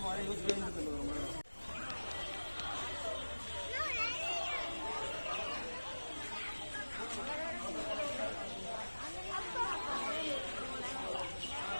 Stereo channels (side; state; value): both; inverted; correlation -1.00